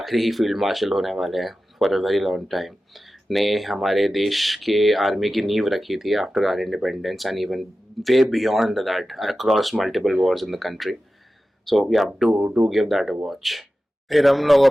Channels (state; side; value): normal; both; correlation 0.94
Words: ही फील्ड मार्शल होने वाले हैं for a very long time ने हमारे देश के आर्मी की नींव रखी थी after our independence, and even way beyond that across multiple wars in the country. So we have to give that a watch. फिर हम लोग